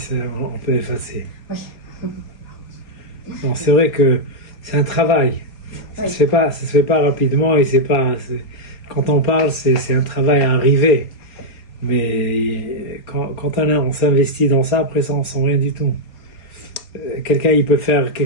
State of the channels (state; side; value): late; right; 4.2 ms